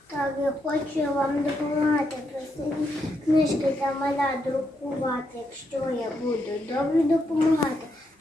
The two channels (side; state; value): both; normal; correlation 0.80